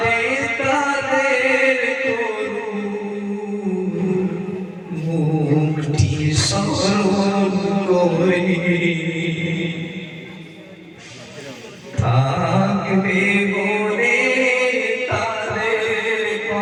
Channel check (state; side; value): identical; both; correlation 1.00